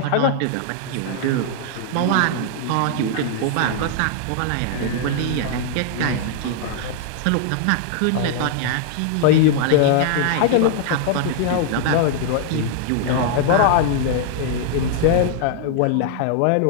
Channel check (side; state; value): both; different; correlation 0.00